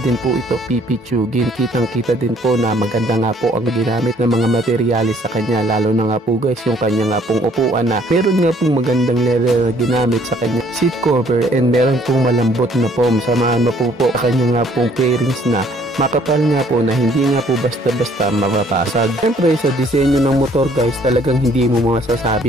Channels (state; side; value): normal; both; correlation 0.61